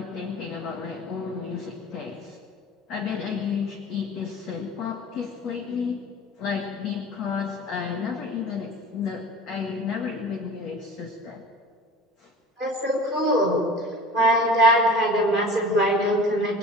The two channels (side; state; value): both; normal; correlation 0.41